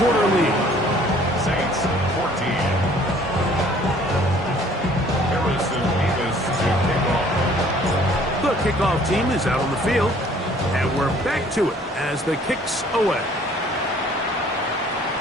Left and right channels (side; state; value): both; normal; correlation 0.56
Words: quarter lead. Saints 14. Harrison Davis to kick off. The kickoff team is out on the field, and we're back to it as the kicks away.